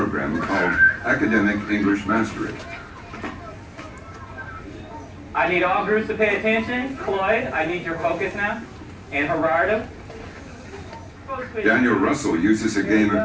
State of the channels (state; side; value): identical; both; correlation 1.00